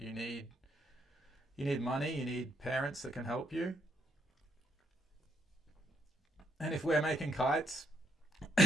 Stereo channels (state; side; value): normal; both; correlation 0.75